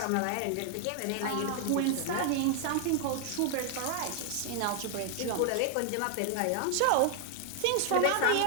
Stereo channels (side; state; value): both; different; correlation 0.00